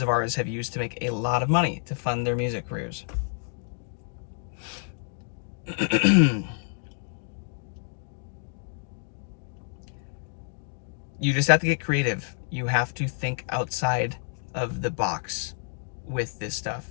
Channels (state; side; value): silent; right; 58 dB below the other